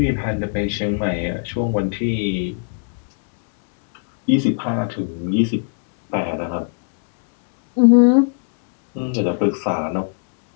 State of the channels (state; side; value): silent; right; digital silence